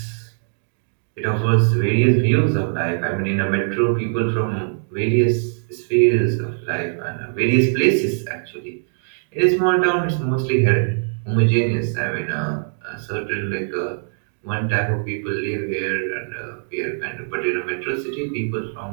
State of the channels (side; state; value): left; silent; digital silence